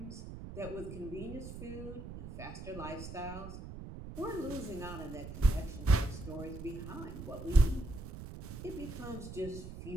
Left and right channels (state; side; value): noise; right; rumble, 10 dB below the sound